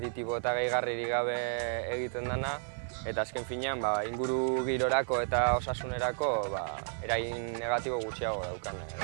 eta gehigarririk gabe egiten dena, eta azken finean inguru girorako eta osasunerako eragin negatibo gutxiago daukan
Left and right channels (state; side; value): silent; left; 56 dB below the other